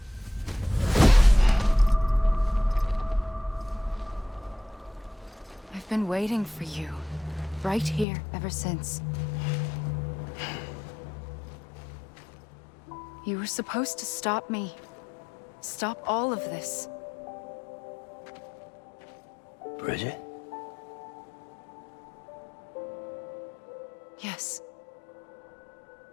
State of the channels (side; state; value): right; drops out; at 8.1 s